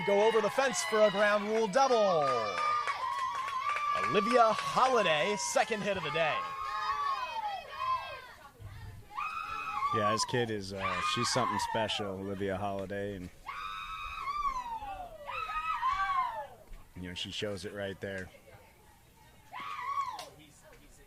go over the fence for a ground rule double. Olivia Holiday, second hit of the day. Yeah, this kid is, she's something special, Olivia Holiday. And, she shows it right there.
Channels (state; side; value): identical; both; correlation 1.00